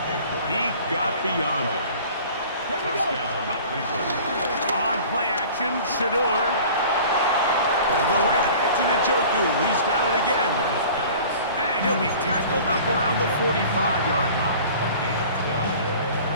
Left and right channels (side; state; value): both; inverted; correlation -0.44